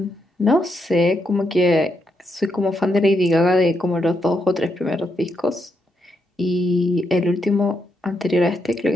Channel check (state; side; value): normal; both; correlation 0.81